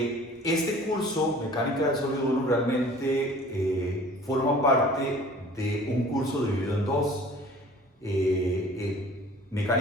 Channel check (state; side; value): normal; both; correlation 0.47